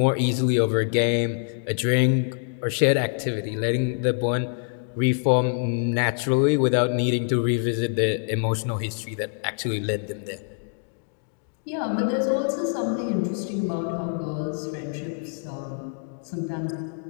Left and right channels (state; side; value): silent; right; digital silence